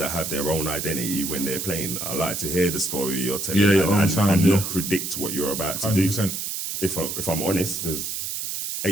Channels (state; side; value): noise; right; hiss, 4 dB below the sound